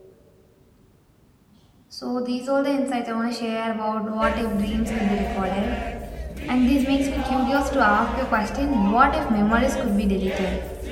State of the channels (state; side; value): identical; both; correlation 1.00